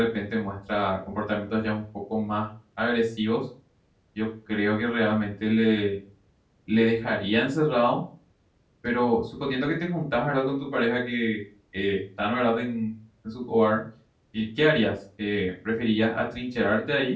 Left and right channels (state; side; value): identical; both; correlation 1.00